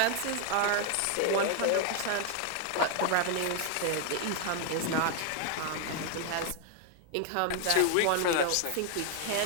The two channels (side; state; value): both; different; correlation 0.00